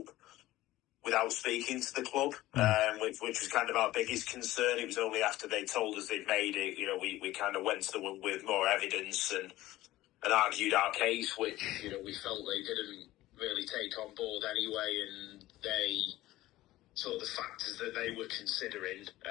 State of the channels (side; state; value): right; quieter; 16.5 dB